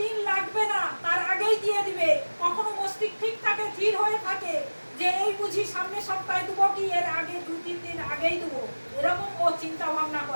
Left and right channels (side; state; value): both; inverted; correlation -1.00